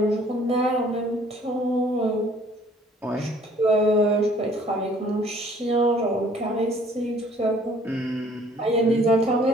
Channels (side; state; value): both; normal; correlation 0.57